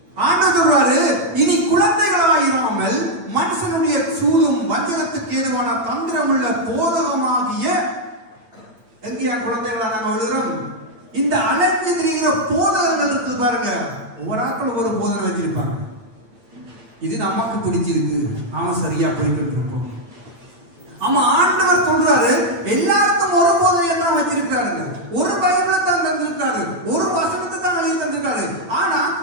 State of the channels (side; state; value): left; late; 8.6 ms